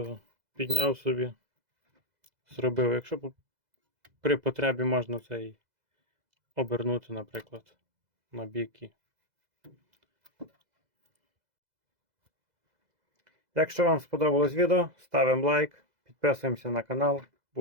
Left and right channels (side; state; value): left; late; 2.0 ms